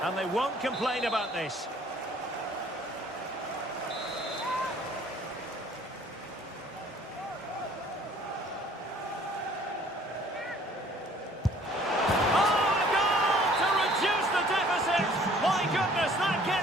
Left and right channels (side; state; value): both; normal; correlation 0.55